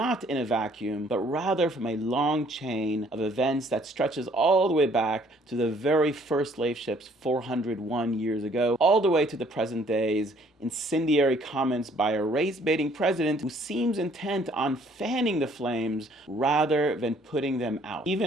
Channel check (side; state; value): both; normal; correlation 0.61